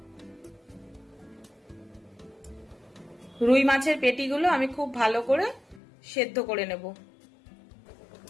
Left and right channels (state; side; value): drops out; right; at 5.8 s